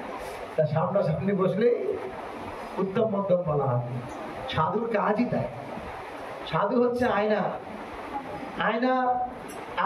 তা সামনাসামনি বসলে উত্তম মধ্যম বলা হয়। সাধুর কাজই তাই। সাধু হচ্ছে আয়না। আয়না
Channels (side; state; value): both; identical; correlation 1.00